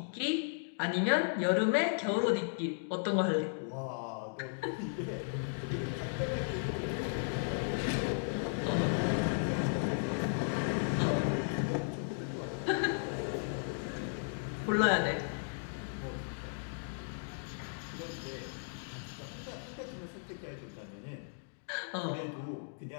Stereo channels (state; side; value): silent; right; digital silence